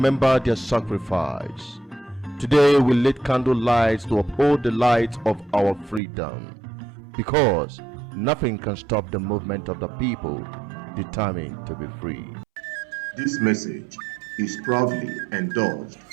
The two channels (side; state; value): left; drops out; at 6.0 s